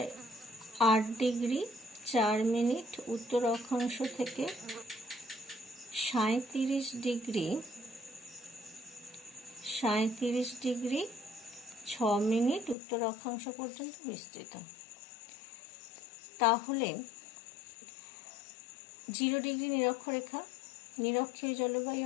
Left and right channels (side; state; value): right; drops out; at 12.8 s